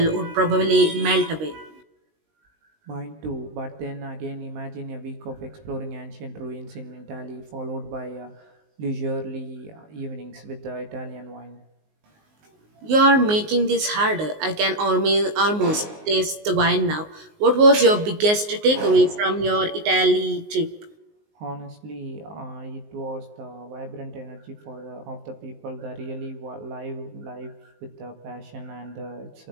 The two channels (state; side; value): late; left; 19 ms